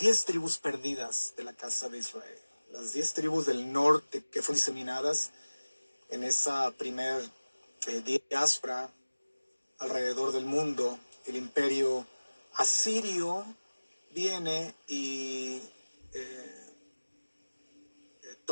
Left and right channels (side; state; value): both; inverted; correlation -1.00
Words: tribus perdidas de la casa de Israel, las 10 tribus del norte que fueron diseminadas en esa primer diáspora alrededor del mundo. El imperio asirio viene y